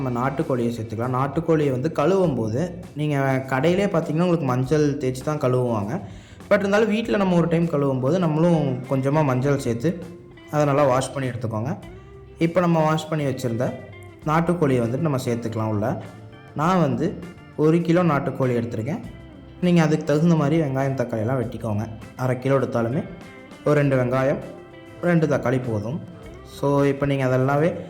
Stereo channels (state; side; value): identical; both; correlation 1.00